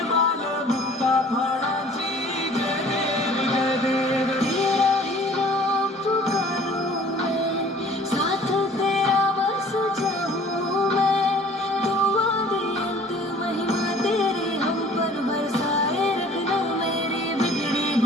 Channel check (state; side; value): normal; both; correlation 0.51